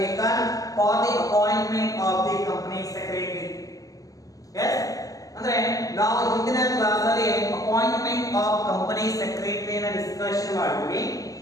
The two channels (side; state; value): right; late; 0.17 ms